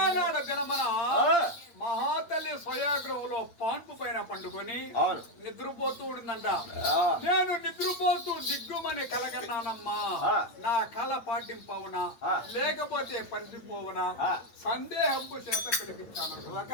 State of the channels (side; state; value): right; late; 8.6 ms